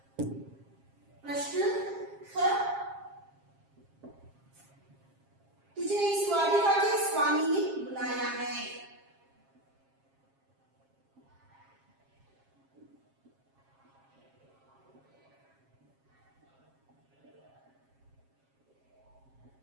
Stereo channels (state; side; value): late; left; 7.4 ms